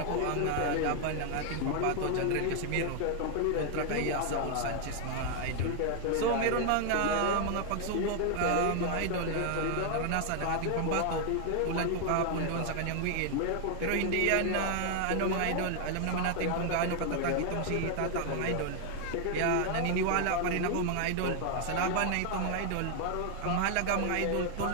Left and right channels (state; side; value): different; both; correlation 0.00